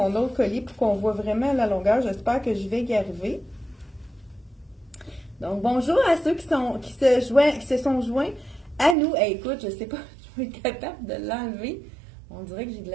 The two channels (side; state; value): left; drops out; at 9.0 s